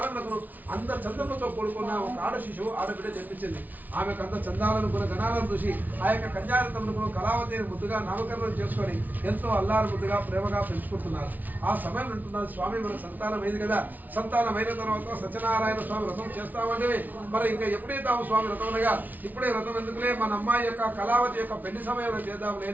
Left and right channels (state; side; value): late; left; 0.080 ms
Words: అంత చందములతో కూడుకున్న ఒక ఆడ శిశువు ఆడబిడ్డ జన్మించింది. ఆమెకు అంత చందాలను గణాలను చూసి ఆ యొక్క కన్యారతములకు కళావతి ముద్దుగా నామకరణం చేసుకొని ఎంతో అల్లారు ముద్దుగా ప్రేమగా పెంచుకుంటున్నారు. ఆ సమయం అంటున్నారు, స్వామి మన సంతానం అయింది కదా, సంతానమైన తర్వాత సత్యనారాయణ స్వామి వ్రతం చేస్తామంటే మరి ఇంకా ఎప్పుడే తాము స్వామి వ్రతం అనగా ఇప్పుడే వ్రతం ఎందుకులే, మన అమ్మాయి యొక్క కళావతి యొక్క పెళ్లి సమయంలో చేద్దాం